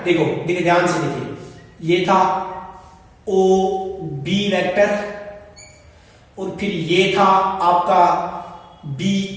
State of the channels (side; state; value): both; identical; correlation 1.00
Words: देखो देखिए ध्यान से देखिए, ये था OB वेक्टर और फिर ये था आपका